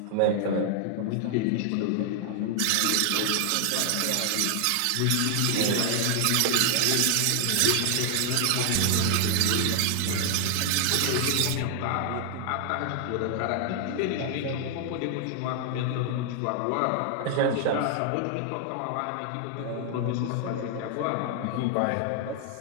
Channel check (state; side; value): different; both; correlation 0.00